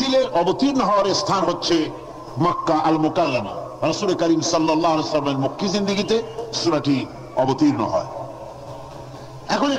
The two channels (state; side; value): identical; both; correlation 1.00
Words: অবতীর্ণ হওয়ার স্থান হচ্ছে মক্কা আল মুকাররমা। রাসূল করিম সাল্লাল্লাহু আলাইহি ওয়াসাল্লামের মক্কি জিন্দেগিতে সূরাটি অবতীর্ণ হয়। এখন